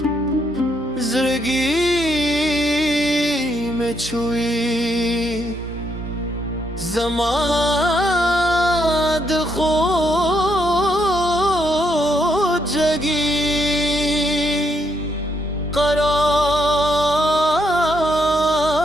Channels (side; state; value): both; normal; correlation 0.76